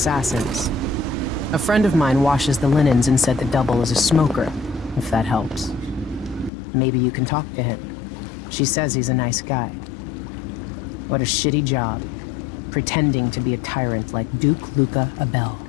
A friend of mine washes the linens and said the double is a smoker, if that helps. Maybe you can talk to him. She says he's a nice guy. What a shitty job, pretending to be a tyrant like Duke Luca Abel.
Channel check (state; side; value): drops out; right; at 6.5 s